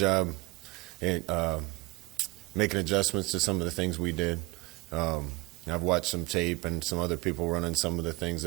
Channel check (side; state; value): left; quieter; 24.6 dB